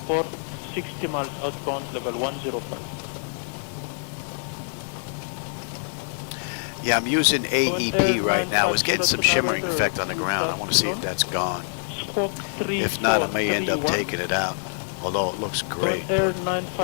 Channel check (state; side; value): silent; right; digital silence